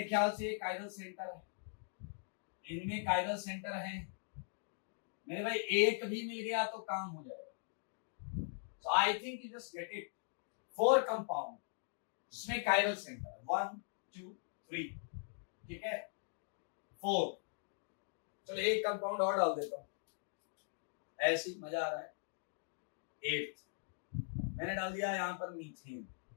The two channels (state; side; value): silent; right; digital silence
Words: ख्याल से ये कायरल सेंटर है, इनमें कायरल सेंटर है मेरे भाई, एक भी मिल गया तो काम हो जाएगा। So I think you just get it, 4 compound जिसमें कायरल सेंटर 1 2 3, ठीक है, 4। चलो एक कंपाउंड और डाल देता हूं, ऐसे ही मजा आ रहा है। 8 मैंने डाल दिया यहाँ पर मीथेन,